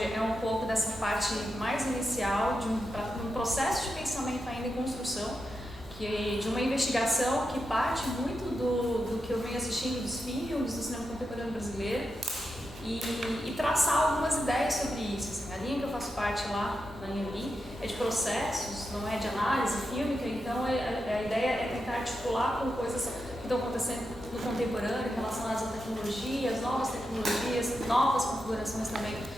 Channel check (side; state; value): both; normal; correlation 0.87